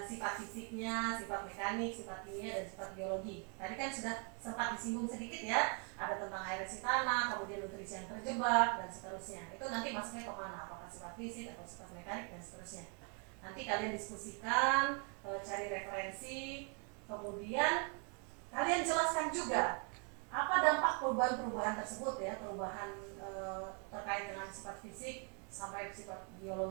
sifat fisiknya, sifat mekanik, sifat kimia, dan sifat biologi. Tadi kan sudah sempat disinggung sedikit ya, ada tentang aerasi tanah, kemudian nutrisi yang terjebak, dan seterusnya. Itu nanti masuknya kemana? Apakah sifat fisik atau sifat mekanik, dan seterusnya. Nanti kalian diskusikan, cari referensi, kemudian kalian jelaskan juga apa dampak perubahan-perubahan tersebut ya, perubahan terkait dengan sifat fisik sampai sifat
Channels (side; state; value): left; quieter; 37.7 dB